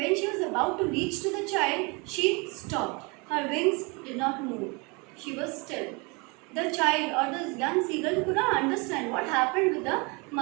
she was about to reach to the child, she stopped. Her wings did not move. She was still. The child or the young seagull could not understand what happened with the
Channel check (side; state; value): left; quieter; 29.3 dB